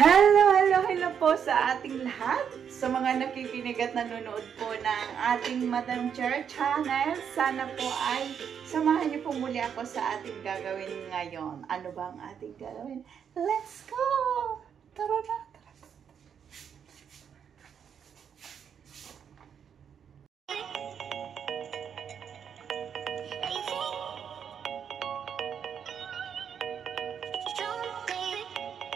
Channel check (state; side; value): quieter; left; 7.8 dB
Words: po sa ating lahat. Sa mga nakikinig at nanonood po ng ating Madam Chair channel, sana po ay samahan niyo po muli ako sa ating gagawin ngayon. Ano ba ang ating gagawin? Let's go! Tara na!